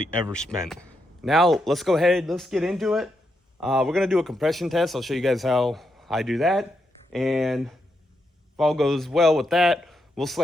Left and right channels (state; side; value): normal; both; correlation 0.82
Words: ever spent. Now let's go ahead, let's get into it. We're gonna do a compression test. I'll show you guys how I do that. And if all goes well with that, we'll